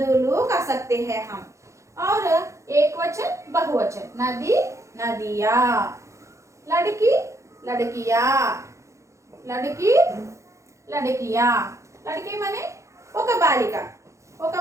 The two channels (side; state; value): left; late; 0.15 ms